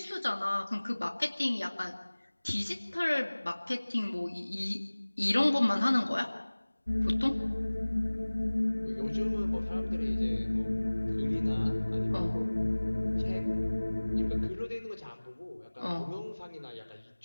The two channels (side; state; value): both; inverted; correlation -1.00